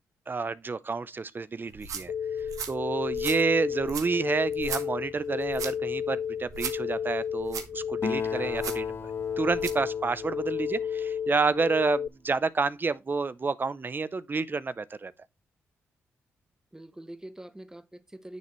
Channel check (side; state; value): both; normal; correlation 0.69